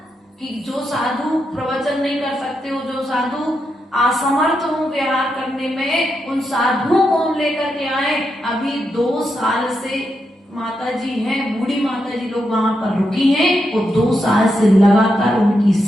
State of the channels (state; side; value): normal; both; correlation 0.84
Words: कि जो साधु प्रवचन नहीं कर सकते हो, जो साधु असमर्थ हो व्यवहार करने में, उन साधुओं को हम लेकर के आए। अभी 2 साल से माता जी हैं, बूढ़ी माता जी लोग वहां पर रुकी हैं, वो 2 साल से लगातार उनकी